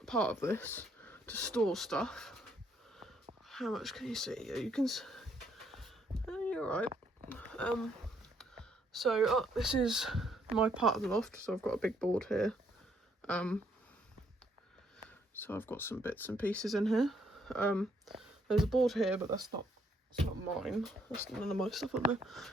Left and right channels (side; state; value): both; normal; correlation 0.69